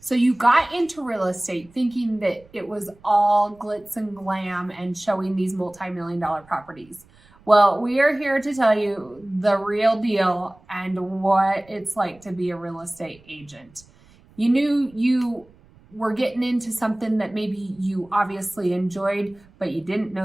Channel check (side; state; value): right; noise; rumble, 28 dB below the sound